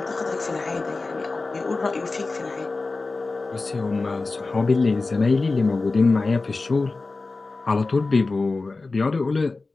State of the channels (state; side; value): quieter; right; 3.6 dB